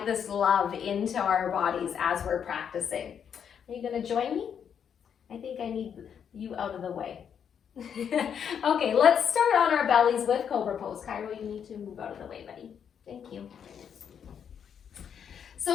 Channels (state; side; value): quieter; right; 7.9 dB